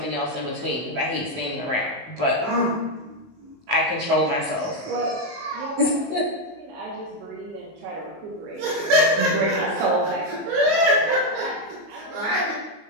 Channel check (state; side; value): late; left; 19 ms